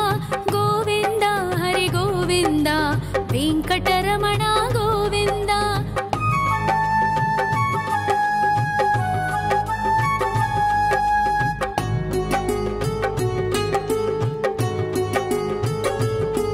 ಗೋವಿಂದ ಹರಿ ಗೋವಿಂದ ವೆಂಕಟರಮಣ ಗೋವಿಂದ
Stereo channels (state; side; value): identical; both; correlation 1.00